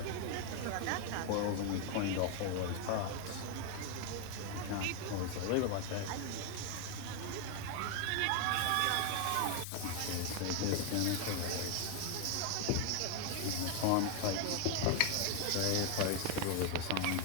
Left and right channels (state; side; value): different; both; correlation 0.01